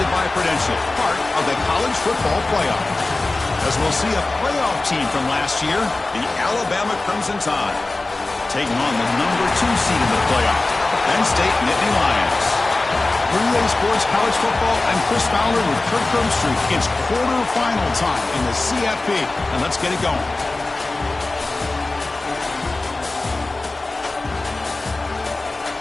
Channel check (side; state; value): right; quieter; 3.1 dB